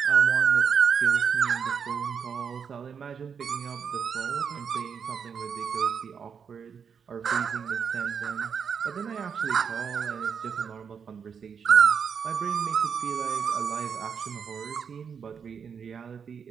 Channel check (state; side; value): quieter; left; 6.7 dB